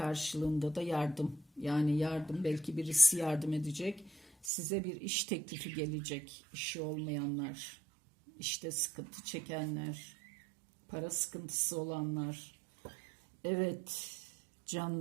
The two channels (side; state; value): left; drops out; at 4.5 s